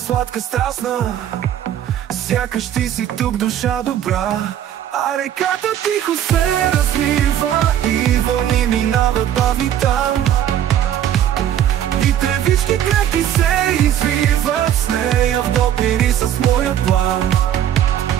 страстна. Сякаш ти си тук, душа добра. А реката тихо се разлива и вълни минават бавни там. И тревички крехки се извиват с нея в допири с моя план.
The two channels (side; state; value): left; quieter; 10.7 dB